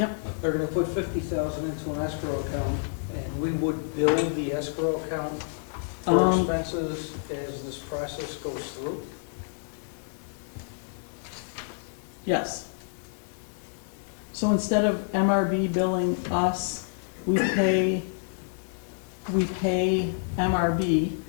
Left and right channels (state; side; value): silent; right; digital silence